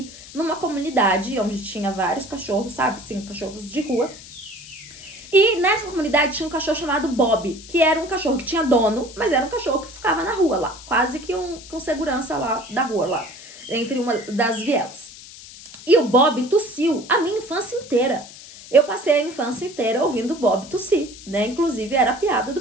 numa comunidade onde tinha vários cachorros, sabe? Sim, cachorros de rua. E nessa comunidade tinha um cachorro chamado Bob, que era um cachorro que tinha dono, mas era um cachorro que ficava na rua lá, quase que com segurança lá da rua, lá, entre uma das vielas. E o Bob tossiu a minha infância inteira. Eu passei a infância inteira ouvindo o Bob tossir, né? Inclusive era a piada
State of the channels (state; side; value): noise; left; hiss, 17 dB below the sound